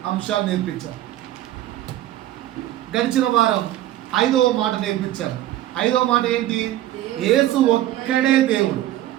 అంశాలు నేర్పించారు. గడిచిన వారం 5వ మాట నేర్పించారు. 5వ మాట ఏంటి? యేసు ఒక్కడే దేవుడు.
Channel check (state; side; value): quieter; left; 14.0 dB